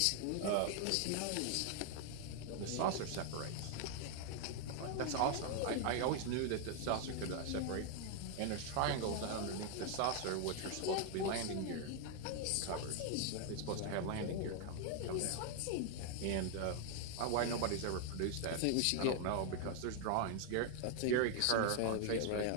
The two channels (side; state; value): both; different; correlation 0.00